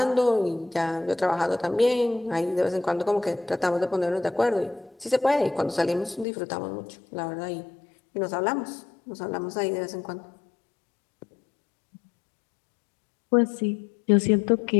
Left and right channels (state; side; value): drops out; right; at 6.2 s